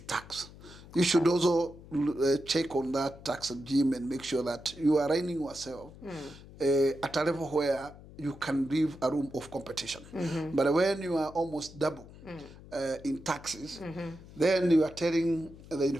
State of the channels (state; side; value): noise; left; hum, 18 dB below the sound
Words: You should also check on that tax regime and make sure that you are running yourself at a level where you can leave a room of competition. But when you are almost double in taxes, then you are telling the